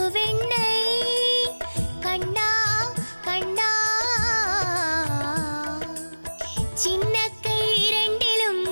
കണ്ണാ കണ്ണാ ചിന്ന കൈ രണ്ടിലും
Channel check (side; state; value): both; inverted; correlation -1.00